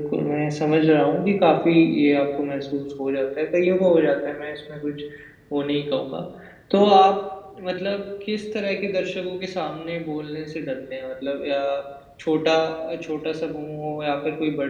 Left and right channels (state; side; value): identical; both; correlation 1.00